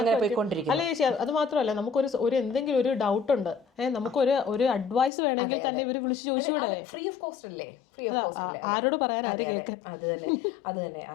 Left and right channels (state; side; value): drops out; right; at 5.1 s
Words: പോയിക്കൊണ്ടിരിക്കും. അല്ല ചേച്ചി, അത് മാത്രമല്ല, നമുക്കൊരു എന്തെങ്കിലും ഒരു ഡൗട്ട് ഉണ്ട്, നമുക്കൊരു അഡ്വൈസ് വേണമെങ്കിൽ തന്നെ ഇവര് വിളിച്ച് ചോദിച്ചു, ഫ്രീ ഓഫ് കോസ്റ്റ് അല്ലേ? ആരോട് പറയാൻ? അത് തന്നെ